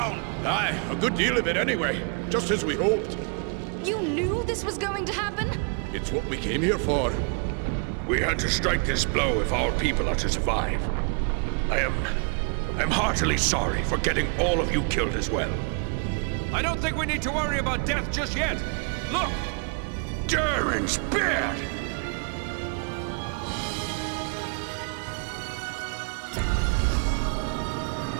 Aye, a good deal of it anyway. Just as we hoped. You knew this was going to happen? It's what we came here for. We had to strike this blow if our people are to survive. I'm heartily sorry for getting all of you killed as well. I don't think we need to worry about death just yet. Look! Durin's beard!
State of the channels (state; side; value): quieter; left; 39.1 dB